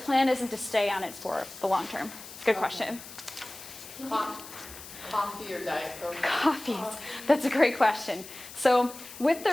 isn't to stay on it for the long term. Good question. Coffee or Diet Coke? Coffees. That's a great question. So with the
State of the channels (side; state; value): left; noise; hiss, 15 dB below the sound